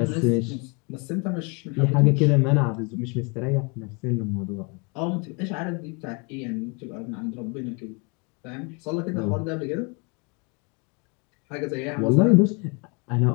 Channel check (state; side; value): quieter; right; 31.7 dB